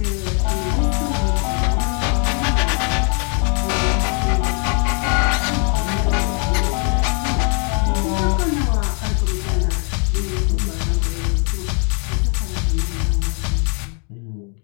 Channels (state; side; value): quieter; right; 39.1 dB